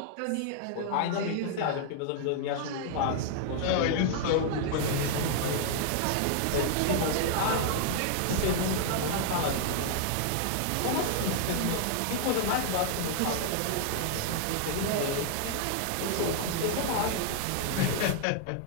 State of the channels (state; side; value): different; both; correlation 0.00